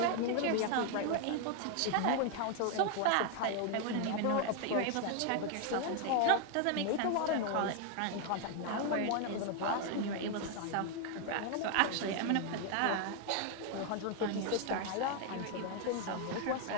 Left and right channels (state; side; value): different; both; correlation 0.00